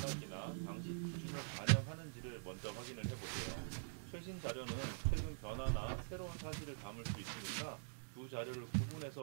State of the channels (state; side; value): silent; left; digital silence